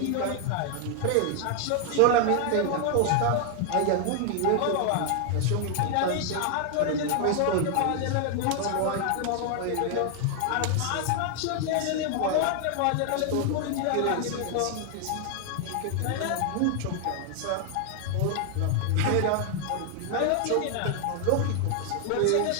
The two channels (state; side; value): different; both; correlation 0.00